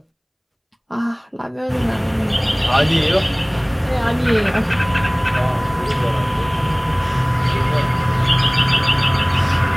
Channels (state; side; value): identical; both; correlation 1.00